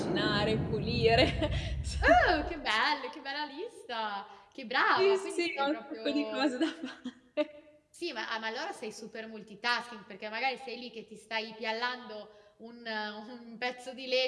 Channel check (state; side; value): identical; both; correlation 1.00